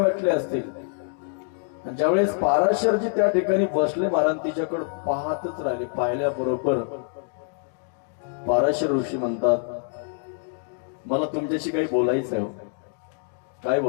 असतील. ज्यावेळेस पाराशरजी त्या ठिकाणी बसले, महाराज तिच्याकडे पाहतच राहिले. पाहिल्याबरोबर पाराशर ऋषी म्हणतात, मला तुमच्याशी काही बोलायचंय. काय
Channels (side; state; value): right; silent; 60 dB below the other